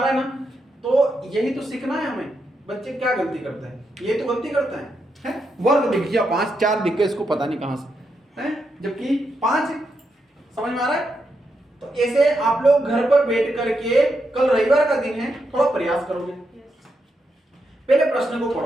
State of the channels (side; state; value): both; normal; correlation 0.83